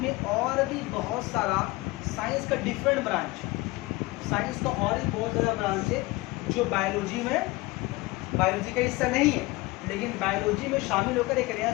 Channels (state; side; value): quieter; right; 21.3 dB